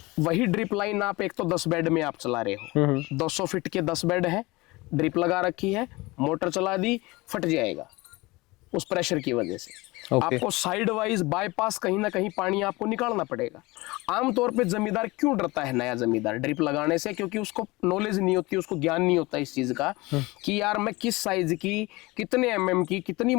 वही ड्रिप लाइन आप एक तो 10 बेड में आप चला रहे हो, 200 फीट के 10 बेड है, ड्रिप लगा रखी है, मोटर चला दी, फट जाएगा उस प्रेशर की वजह से। आपको साइड वाइज बाईपास कहीं ना कहीं पानी आपको निकालना पड़ेगा। आमतौर पे जमींदार क्यों डरता है, नया जमींदार ड्रिप लगाने से? क्योंकि उसको नॉलेज नहीं होती, उसको ज्ञान नहीं होता इस चीज का कि यार मैं किस साइज की, कितने एमएम की, कितनी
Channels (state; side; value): quieter; right; 22.3 dB